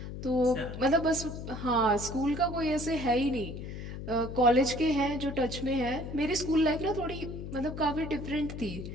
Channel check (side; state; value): left; noise; hum, 8 dB below the sound